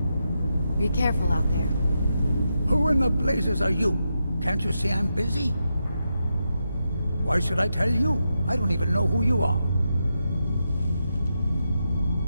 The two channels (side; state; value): both; inverted; correlation -0.86